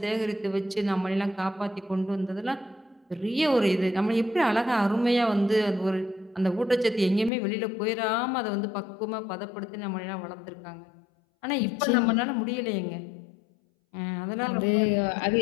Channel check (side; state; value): right; drops out; at 7.3 s